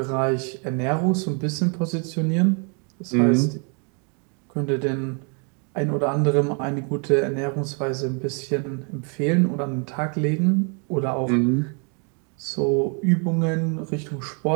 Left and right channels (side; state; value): left; quieter; 37.8 dB